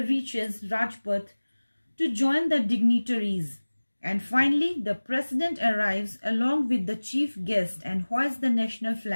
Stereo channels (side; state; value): both; inverted; correlation -1.00